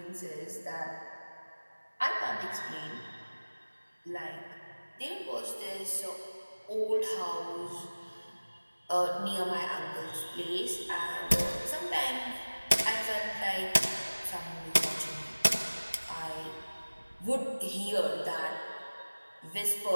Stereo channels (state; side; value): inverted; both; correlation -1.00